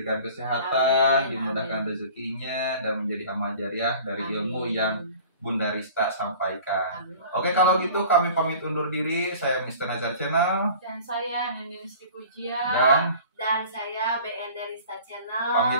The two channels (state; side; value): inverted; both; correlation -0.44